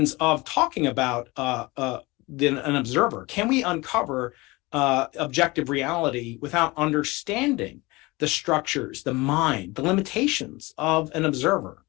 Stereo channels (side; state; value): right; quieter; 23.0 dB